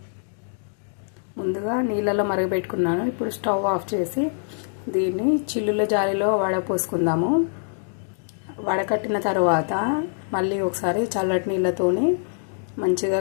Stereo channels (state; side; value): silent; right; digital silence